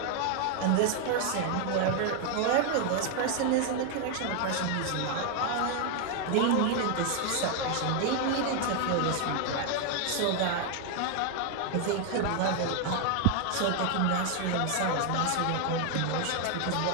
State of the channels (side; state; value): both; different; correlation 0.00